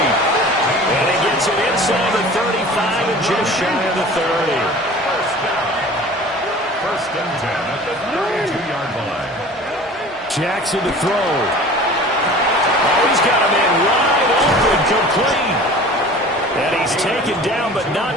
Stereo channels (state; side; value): normal; both; correlation 0.42